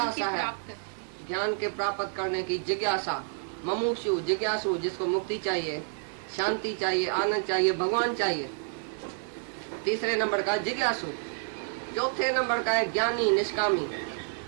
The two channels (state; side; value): silent; left; 58 dB below the other